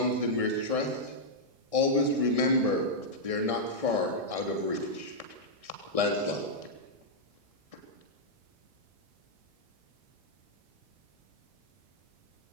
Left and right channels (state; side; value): late; left; 1.6 ms